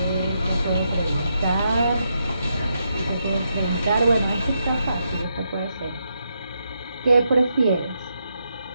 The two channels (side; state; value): both; inverted; correlation -0.81